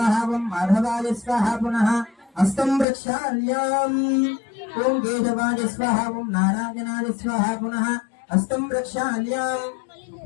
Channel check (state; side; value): drops out; right; at 2.9 s